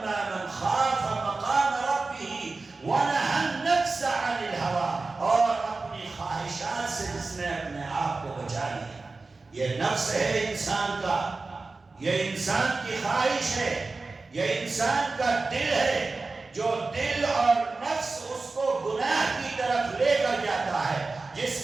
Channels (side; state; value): left; quieter; 3.7 dB